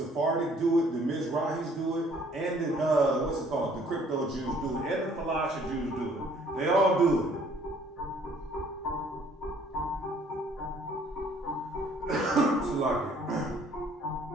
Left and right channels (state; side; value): normal; both; correlation 0.59